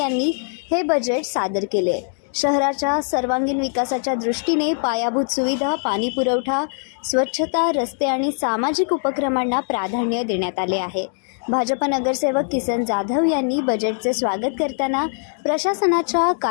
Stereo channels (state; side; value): silent; right; digital silence